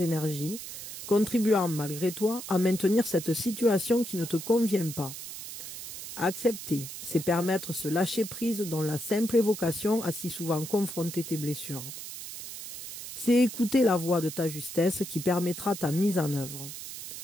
contribuant malgré toi à maintenir cette situation qui ne te convient pas. Accepter, c'est permettre ce lâcher-prise dont la simple évocation a si souvent confronté tes blessures. C'est écouter la voix de ta justesse qui permettra ta mise en œuvre.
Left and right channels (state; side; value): noise; right; hiss, 10 dB below the sound